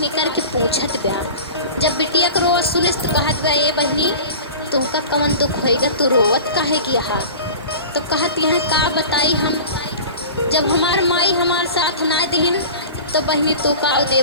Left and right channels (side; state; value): both; inverted; correlation -0.37